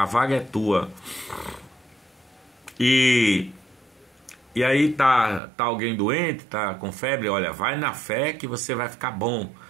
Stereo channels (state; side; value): drops out; left; at 5.4 s